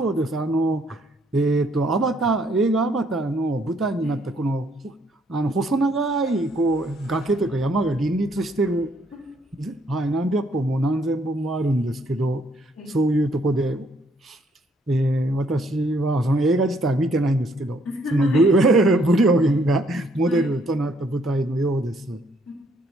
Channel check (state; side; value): normal; both; correlation 0.68